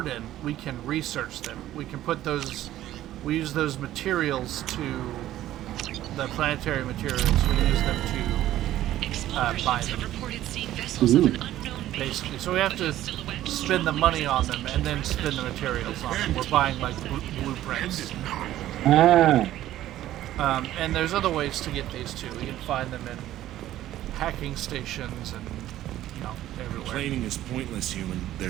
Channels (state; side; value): quieter; left; 13.6 dB